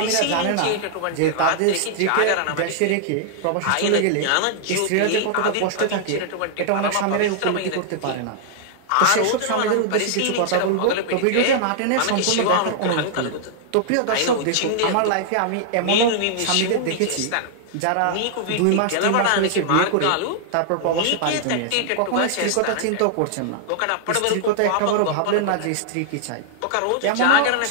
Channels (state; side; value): different; both; correlation -0.01